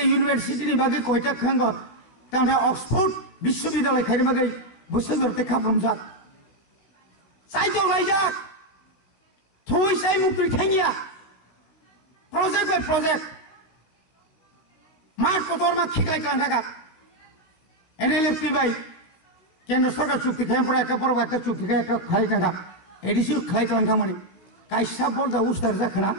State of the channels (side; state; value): right; late; 16 ms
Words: यूनिवर्सिटी नि बागै कयटा खांग तांथा ऑक्सफोर्ड विश्वविद्यालय खायनि बागै बोसोरते खाफ्रमजाक साइतो लायजाक थुइसाय मुक्ति थांगिया प्रोजेक्ट बाय प्रोजेक्ट मार्ट पतर मा खिखलाय खालाम थाका एनएलएफपि बाय केन्द्र सरकार चुक्ति खालामफोरा एका बरफ एका चुक्ति एका खालायनांगा एदिसो खालायखालांथांमानि कायसा बलजा उस्तार जाखोना